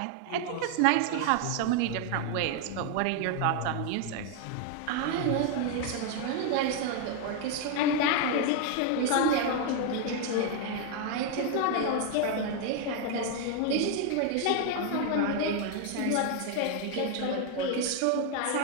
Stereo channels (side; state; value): both; different; correlation 0.01